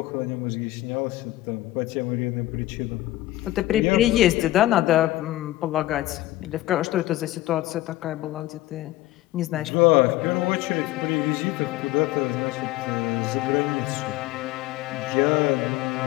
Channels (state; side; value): quieter; right; 16.5 dB